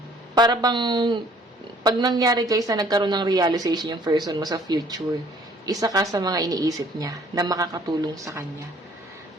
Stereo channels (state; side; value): normal; both; correlation 0.57